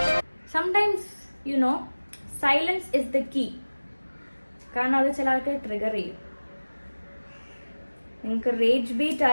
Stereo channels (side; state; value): both; inverted; correlation -1.00